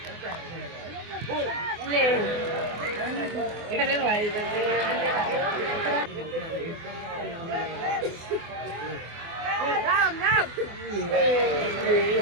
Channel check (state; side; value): late; left; 24 ms